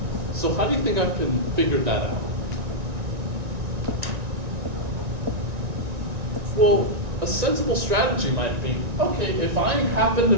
So how do you think I can figure that out? Well, a sensible strategy might be, okay, if I happen to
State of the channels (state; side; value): late; left; 1.9 ms